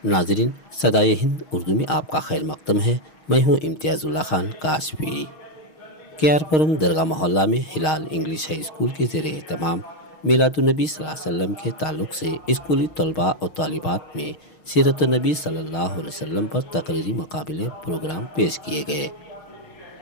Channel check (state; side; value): late; right; 6.4 ms